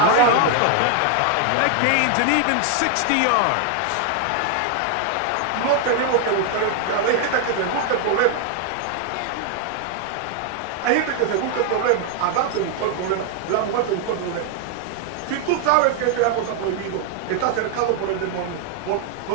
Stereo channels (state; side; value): different; both; correlation 0.00